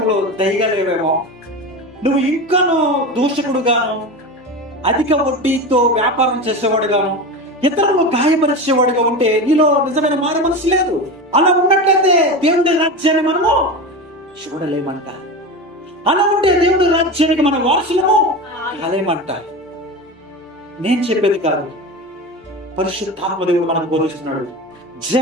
దయగా లేవేమో. నువ్వు ఇంకాను దూషకుడుగాను, అధిక వడ్డీతో వ్యాపారం చేసేవాడుగాను, ఇతరులు గాయపరిచేవాడుగా ఉంటే నీలో నిజమైన మారు మనసు లేదు. అలా ఉన్నట్లయితే దేవుడి రాజ్యాన్ని మనము చూడలేమంట. అలా ఉంటే దేవుడి రాజ్యానికి మన వారసులము కాలేమంట. నేను చెప్పేది కాదు, పరిశుద్ధాత్మ దేవుడు మనకు బోధిస్తున్నాడు.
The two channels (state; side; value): normal; both; correlation 0.25